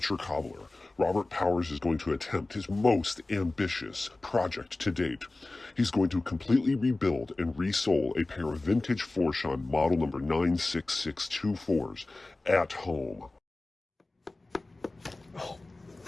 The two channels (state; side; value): quieter; right; 3.0 dB